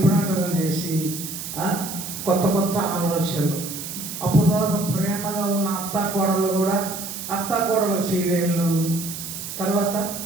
చేసి కొత్త ఆలోచనలు. అప్పుడు దాకా ప్రేమగా ఉన్న అత్తాకోడలు కూడా అత్తాకోడల సీరియళ్ళు, తర్వాత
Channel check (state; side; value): noise; right; hiss, 8 dB below the sound